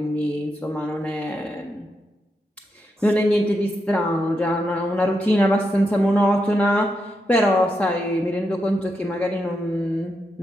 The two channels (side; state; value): both; normal; correlation 0.84